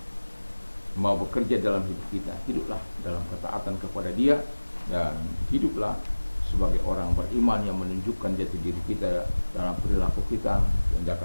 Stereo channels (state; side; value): inverted; both; correlation -1.00